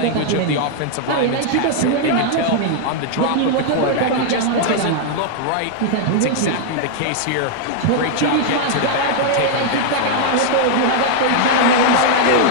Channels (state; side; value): different; both; correlation -0.01